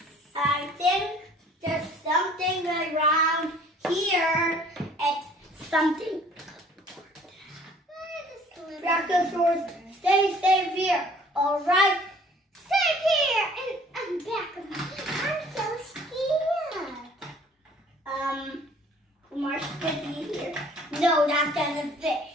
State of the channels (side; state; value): both; normal; correlation 0.54